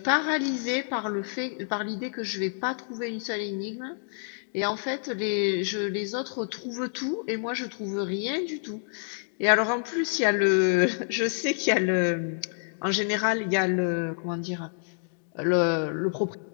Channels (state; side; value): silent; right; digital silence